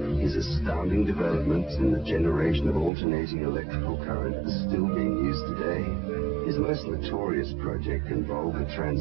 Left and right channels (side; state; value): left; drops out; at 2.9 s